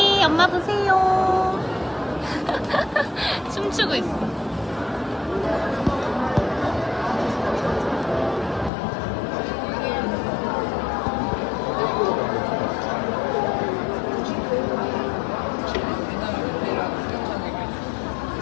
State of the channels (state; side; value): drops out; right; at 8.7 s